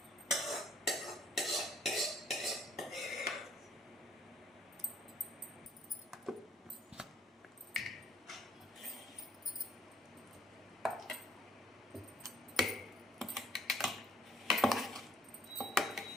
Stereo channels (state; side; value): normal; both; correlation 0.62